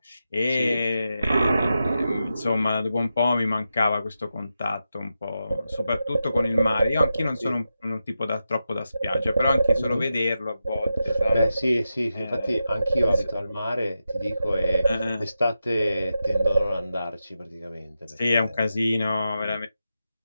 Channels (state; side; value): inverted; both; correlation -0.89